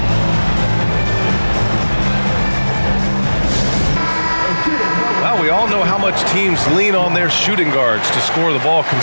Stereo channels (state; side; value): inverted; both; correlation -1.00